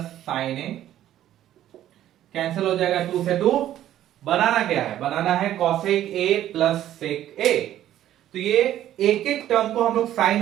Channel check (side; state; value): left; quieter; 12.3 dB